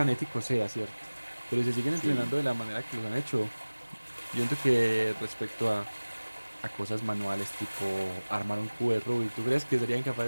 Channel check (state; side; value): inverted; both; correlation -1.00